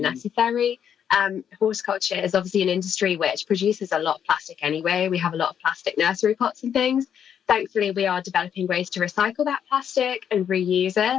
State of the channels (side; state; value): right; quieter; 8.6 dB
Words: Horticulture is obviously an industry which produces a lot of plastic anyway. We have a lot of plastic nursery pots and things. Thankfully, we are developing ways to recycle that plastic and reuse